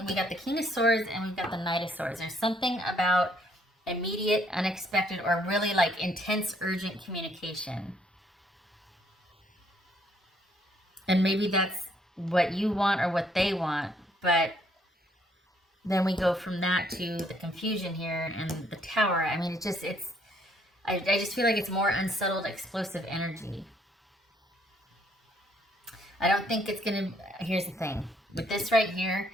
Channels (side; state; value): both; normal; correlation 0.67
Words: we got the King of Swords and we've got the Knight of Swords. There's something about immediate, unexpected, or really like intense, urgent communication. And maybe that's what you want or what they want, but then we go from that to the confusion here and the Tower. I mean, I just feel like it's more unsettled, explosive energy. I don't think it's going to, here's the thing. With this right here,